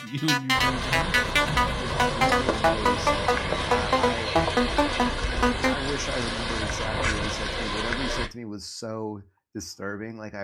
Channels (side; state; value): both; identical; correlation 1.00